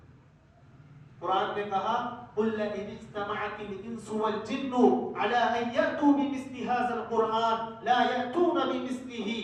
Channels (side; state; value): both; identical; correlation 1.00